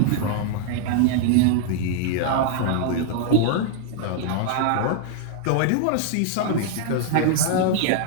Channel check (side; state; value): both; different; correlation 0.00